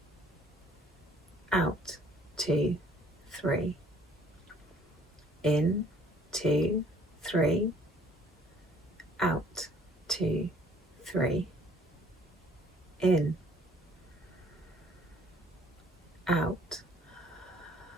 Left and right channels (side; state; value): both; normal; correlation 0.58